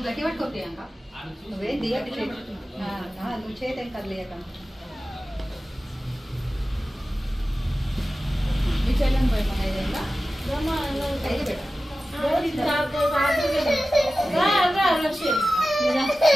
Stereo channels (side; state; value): both; normal; correlation 0.95